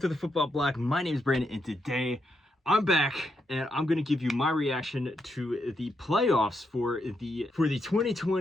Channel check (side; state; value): both; normal; correlation 0.81